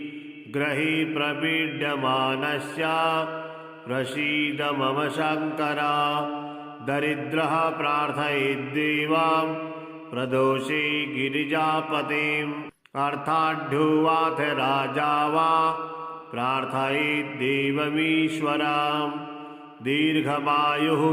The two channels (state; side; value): identical; both; correlation 1.00